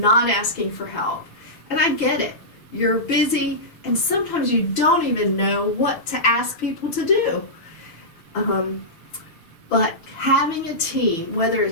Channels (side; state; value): right; late; 6.0 ms